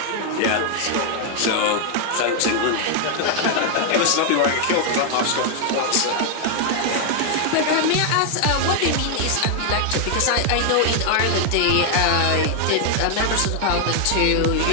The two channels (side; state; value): both; different; correlation 0.00